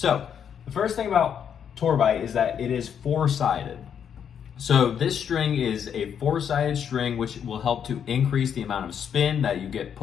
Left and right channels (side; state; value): right; quieter; 8.1 dB